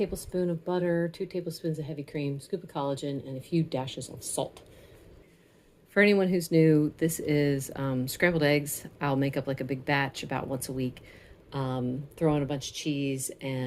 of butter, 2 tablespoons of heavy cream, scoop of collagen, and a few dashes of salt. For anyone who's new, this is scrambled eggs. I'll make up like a big batch about once a week. Throw in a bunch of cheese,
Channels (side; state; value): both; identical; correlation 1.00